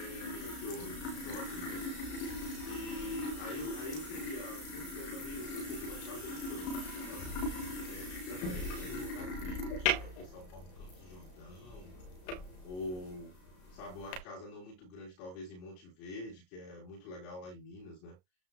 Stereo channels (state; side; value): late; right; 33 ms